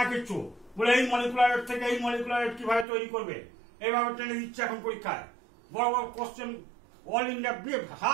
না কিচ্ছু, বলে এই মলিকুলার ওয়েট থেকে এই মলিকুলার ওয়েট কিভাবে তৈরি করবে, এইভাবে টেনে দিচ্ছে এখন পরীক্ষায়। বড় বড় question, all India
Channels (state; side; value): drops out; left; at 2.9 s